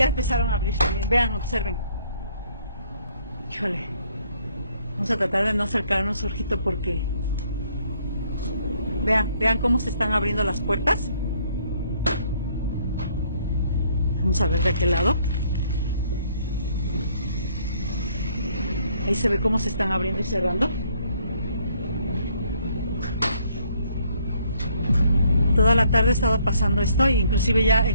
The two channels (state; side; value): inverted; both; correlation -0.66